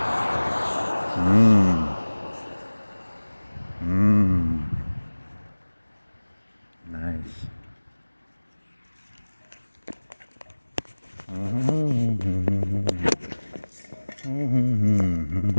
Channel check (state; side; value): inverted; both; correlation -1.00